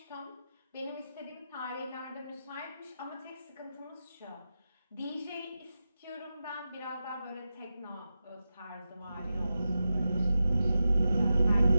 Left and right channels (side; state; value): both; inverted; correlation -0.91